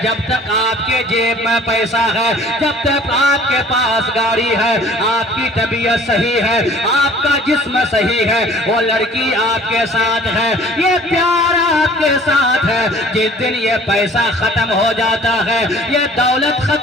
جب تک آپ کے جیب میں پیسہ ہے، جب تک آپ کے پاس گاڑی ہے، آپ کی طبیعت صحیح ہے، آپ کا جسم صحیح ہے، وہ لڑکی آپ کے ساتھ ہے، یہ پیار آپ کے ساتھ ہے. جس دن یہ پیسہ ختم ہو جاتا ہے، یہ دولت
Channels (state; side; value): normal; both; correlation 0.51